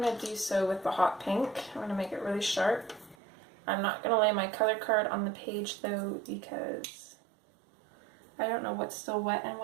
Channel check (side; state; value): left; drops out; at 3.2 s